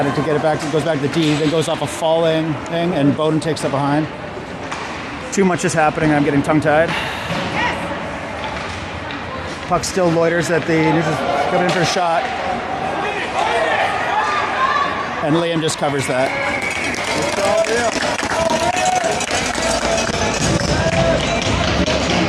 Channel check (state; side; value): identical; both; correlation 1.00